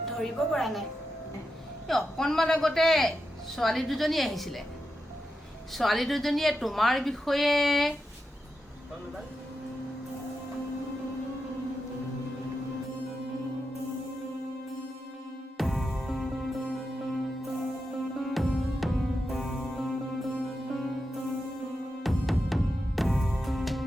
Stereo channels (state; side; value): normal; both; correlation 0.88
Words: ধৰিব পৰা নাই এই অকণমান আগতে ছোৱালী দুজনী আহিছিলে ছোৱালী দুজনীয়ে তোমাৰ বিষয়ে